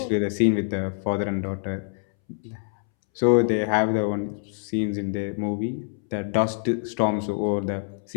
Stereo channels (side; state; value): right; silent; 61 dB below the other